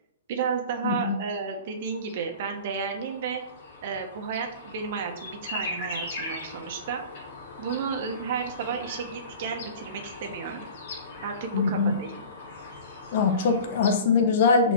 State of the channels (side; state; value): both; inverted; correlation -0.38